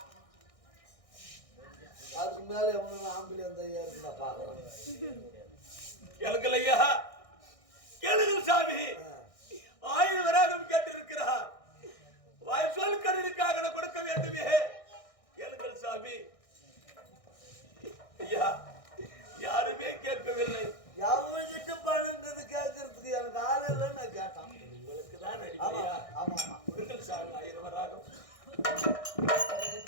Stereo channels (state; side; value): late; right; 1.6 ms